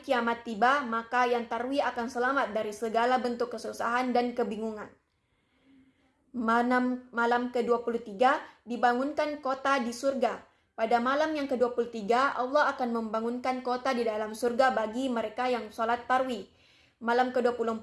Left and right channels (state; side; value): identical; both; correlation 1.00